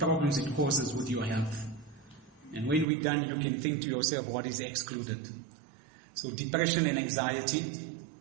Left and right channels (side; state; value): left; drops out; at 2.9 s